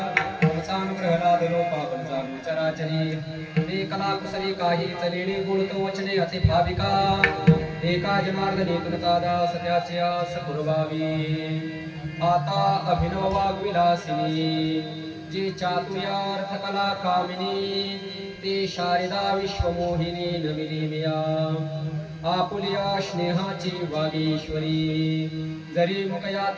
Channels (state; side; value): identical; both; correlation 1.00